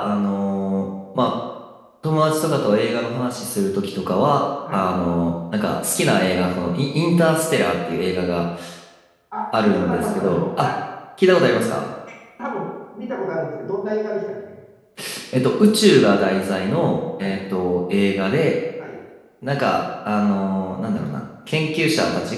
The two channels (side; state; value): both; identical; correlation 1.00